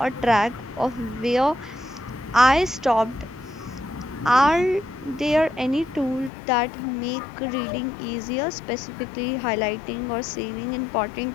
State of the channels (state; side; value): drops out; right; at 6.3 s